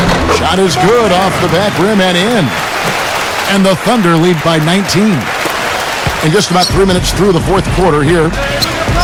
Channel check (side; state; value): both; identical; correlation 1.00